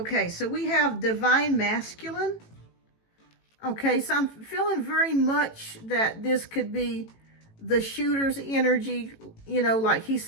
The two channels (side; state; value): right; late; 18 ms